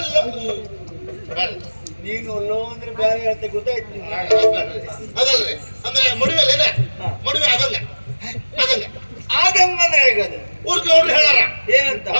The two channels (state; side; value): inverted; both; correlation -1.00